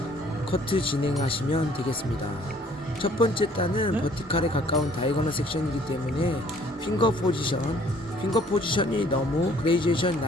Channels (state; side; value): normal; both; correlation 0.58